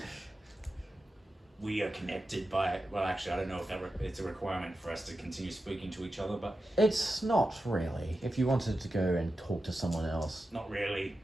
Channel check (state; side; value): normal; both; correlation 0.91